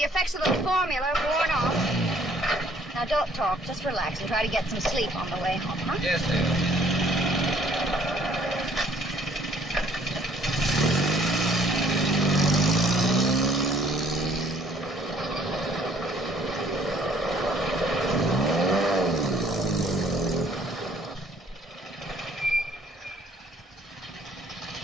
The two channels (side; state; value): both; normal; correlation 0.60